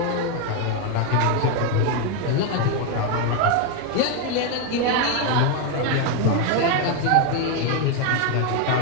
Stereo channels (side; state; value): both; different; correlation 0.01